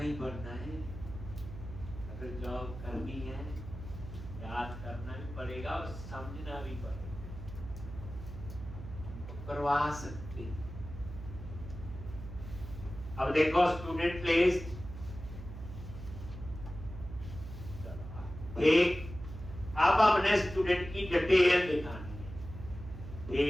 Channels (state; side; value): noise; right; hum, 11 dB below the sound